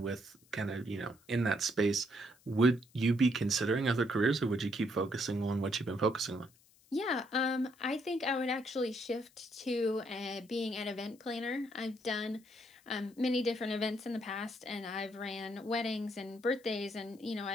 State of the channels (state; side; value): noise; left; hiss, 29 dB below the sound